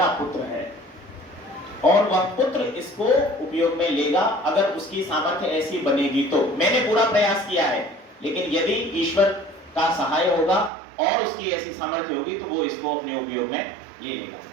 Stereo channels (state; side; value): drops out; left; at 10.7 s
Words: पुत्र है और वह पुत्र इसको उपयोग में लेगा अगर उसकी सामर्थ्य ऐसी बनेगी तो। मैंने पूरा प्रयास किया है, लेकिन यदि ईश्वर का सहाय होगा और उसकी ऐसी सामर्थ्य होगी तो वो इसको अपने उपयोग में ले लेगा।